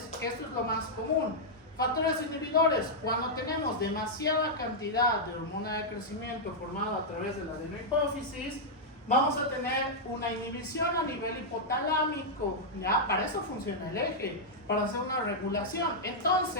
Esto es lo más común. Factores inhibidores: cuando tenemos demasiada cantidad de hormona de crecimiento formada a través de la adenohipófisis, vamos a tener una inhibición a nivel hipotalámico, ¿ya? Para eso funciona el eje, para hacer una regulación.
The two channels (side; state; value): both; normal; correlation -0.06